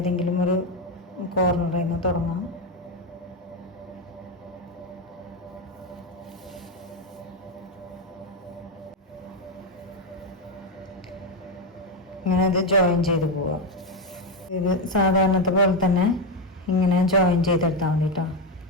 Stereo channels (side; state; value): both; normal; correlation 0.09